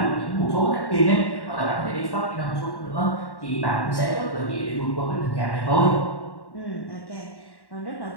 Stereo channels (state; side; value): late; right; 1.1 ms